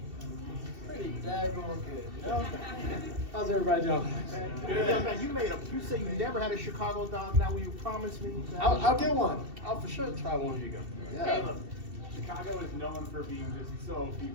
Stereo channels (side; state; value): left; late; 2.7 ms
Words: Pretty daggone good, you know? How's everybody doing? Good. Young man, you say you never had a Chicago dog. Now will you promise me? I'll get one. I'll for sure try one. Here you go. Yeah. Caleb, Chicago is known for being just so